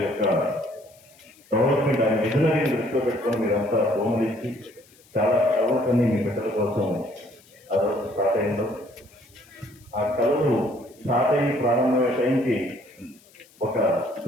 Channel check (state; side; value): noise; left; hiss, 28 dB below the sound